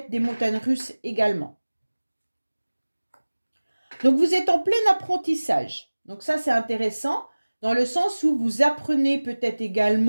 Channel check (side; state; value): both; inverted; correlation -1.00